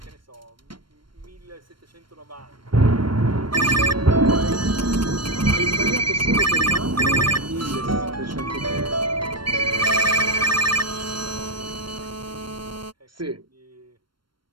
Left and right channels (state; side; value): late; left; 0.72 ms